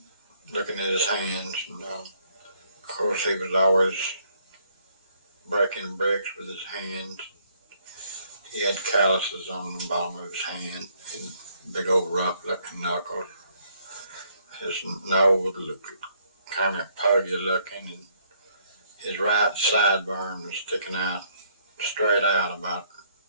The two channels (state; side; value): inverted; both; correlation -0.67